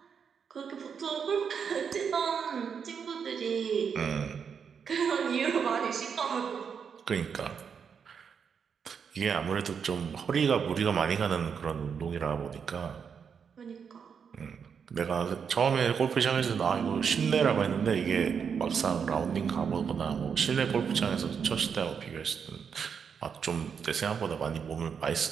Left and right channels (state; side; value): quieter; left; 6.7 dB